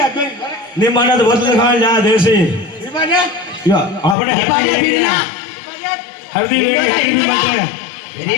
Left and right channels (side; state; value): right; drops out; at 4.2 s